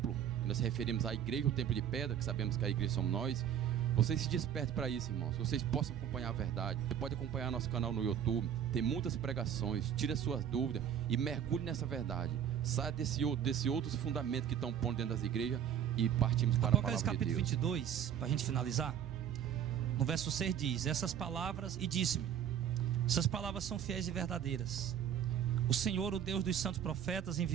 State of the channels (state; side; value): quieter; left; 9.2 dB